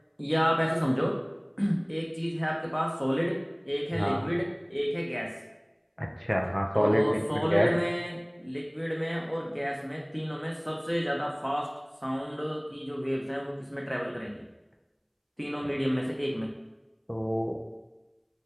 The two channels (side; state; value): both; identical; correlation 1.00